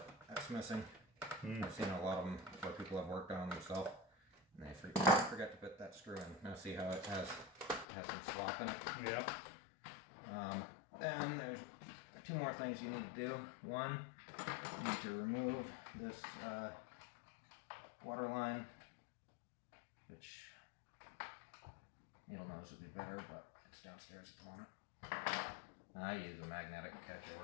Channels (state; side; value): drops out; right; at 7.9 s